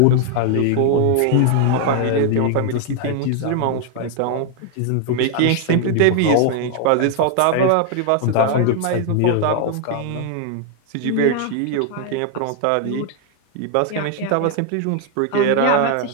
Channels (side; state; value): both; different; correlation 0.00